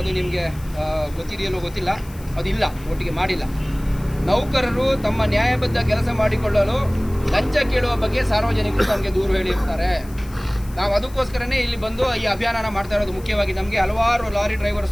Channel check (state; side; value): noise; left; hiss, 22 dB below the sound